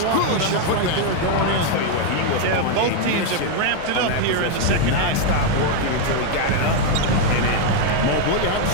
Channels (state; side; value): different; both; correlation 0.00